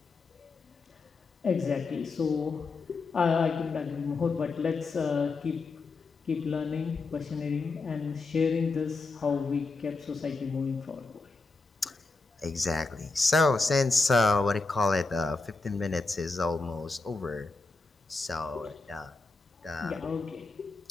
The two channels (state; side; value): quieter; right; 3.8 dB